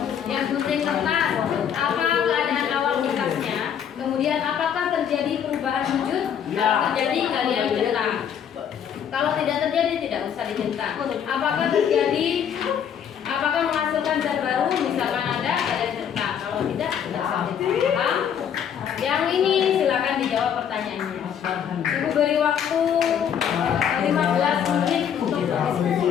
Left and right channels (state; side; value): quieter; right; 8.5 dB